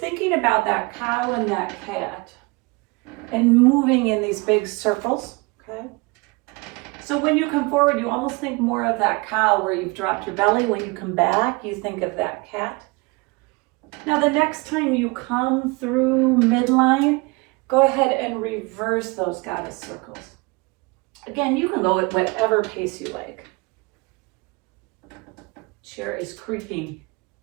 about that cow and that cat and moving in these big circles, okay? So when you come forward, you almost think more of that cow where you've dropped your belly. When you come back, you think of that cat. Now the next time you come through midline, go ahead and reverse those goddess circles. Again, you can go at whatever pace you like. Chair is creaking.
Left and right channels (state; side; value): quieter; left; 27.2 dB